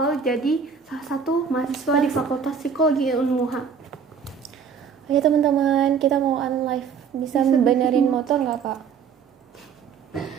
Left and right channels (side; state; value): left; quieter; 6.5 dB